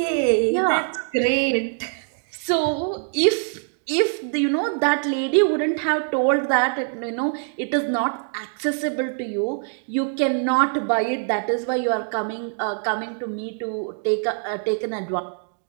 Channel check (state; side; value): silent; left; 63 dB below the other